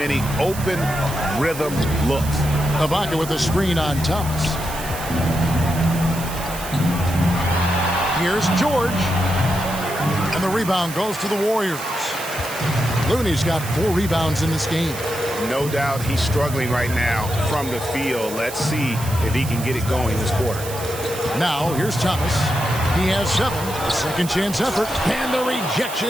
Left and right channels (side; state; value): right; noise; hiss, 11 dB below the sound